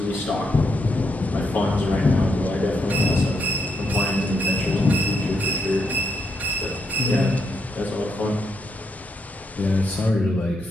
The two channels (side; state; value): both; normal; correlation 0.79